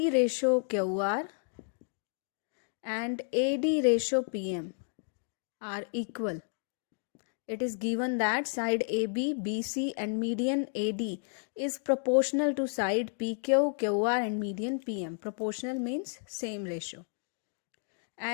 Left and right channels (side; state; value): right; silent; 57 dB below the other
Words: ratio QR and AD ratio PM are equal. It is given that side AB, BC and median AD is proportional to side PQ, QR and median PM. Proportional means same ratio.